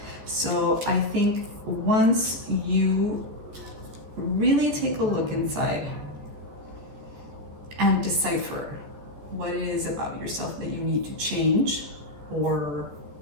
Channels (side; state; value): left; late; 14 ms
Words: So I think once you really take a look inside and decipher what it is about yourself that you need to change or